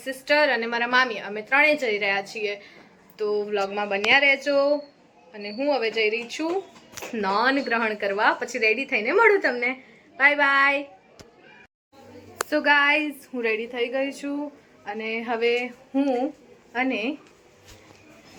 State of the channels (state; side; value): identical; both; correlation 1.00